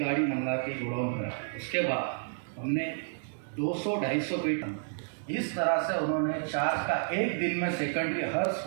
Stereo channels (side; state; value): left; silent; digital silence